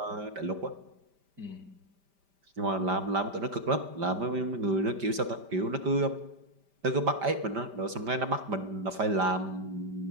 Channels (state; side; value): late; left; 5.1 ms